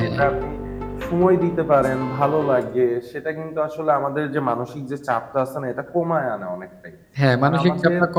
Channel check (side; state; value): both; identical; correlation 1.00